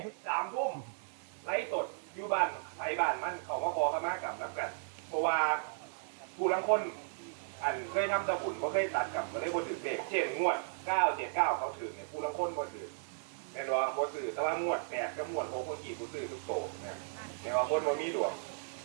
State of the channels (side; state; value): left; silent; digital silence